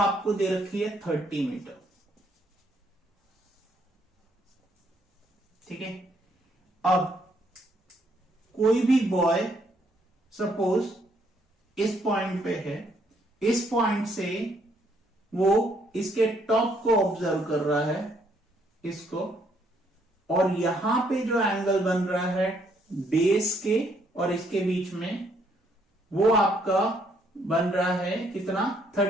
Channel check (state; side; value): normal; both; correlation 0.70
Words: दे रखी है 30 मीटर, ठीक है। अब कोई भी बॉय सपोज इस पॉइंट पे है, इस पॉइंट से वो इसके टॉप को ऑब्जर्व कर रहा है, इसको, और यहां पे जो एंगल बन रहा है बेस के और इसके बीच में, वो आपका बन रहा है कितना,